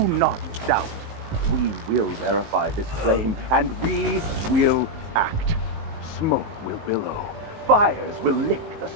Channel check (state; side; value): late; left; 19 ms